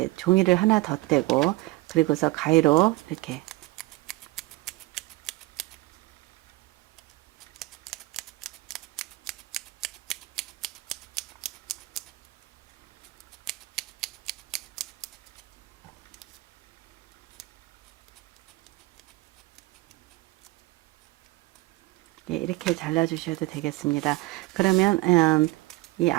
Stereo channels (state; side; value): quieter; left; 20.6 dB